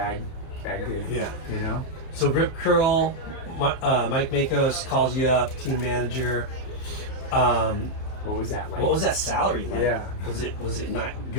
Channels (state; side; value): late; right; 31 ms